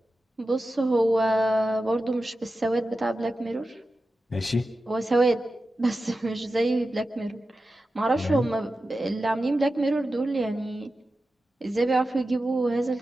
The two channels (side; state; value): both; normal; correlation 0.93